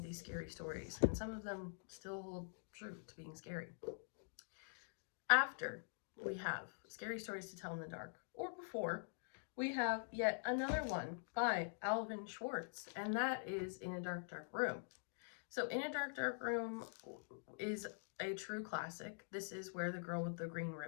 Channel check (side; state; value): right; silent; digital silence